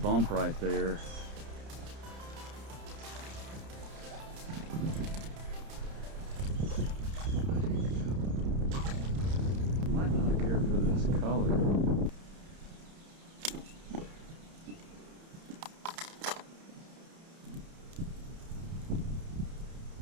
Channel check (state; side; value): late; left; 30 ms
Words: right there. Might not care for this color.